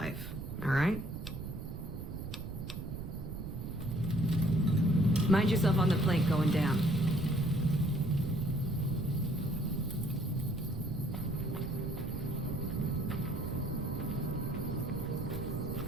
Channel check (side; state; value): right; noise; rumble, 7 dB below the sound